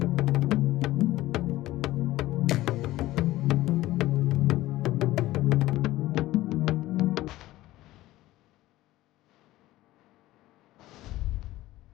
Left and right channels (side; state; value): right; quieter; 16.5 dB